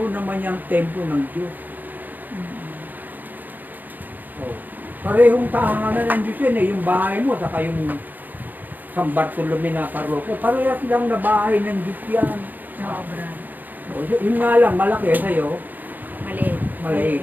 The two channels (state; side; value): late; left; 0.085 ms